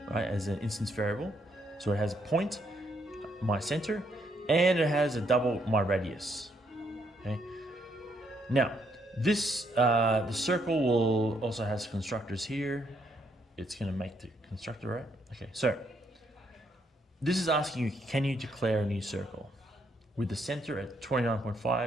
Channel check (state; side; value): normal; both; correlation 0.74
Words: right? As an instance variable. So it has a point, my center, and it has a double, my radius. Okay. Now this the circle will also has constructors here. It's going to make the constructor, right? Okay. So this is asking you, can you declare a new circle with the center at